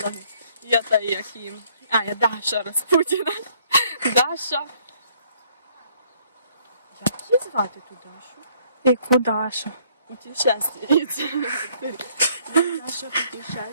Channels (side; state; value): both; inverted; correlation -0.64